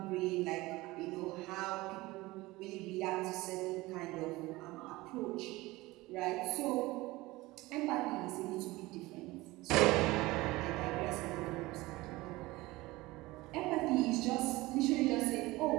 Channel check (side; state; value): left; quieter; 20.1 dB